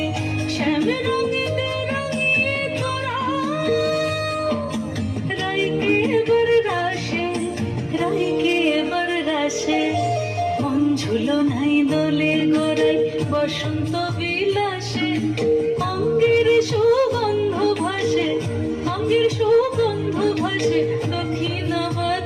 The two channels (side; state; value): both; identical; correlation 1.00